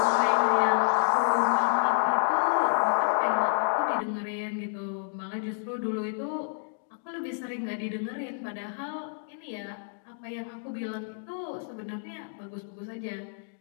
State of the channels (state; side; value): silent; right; digital silence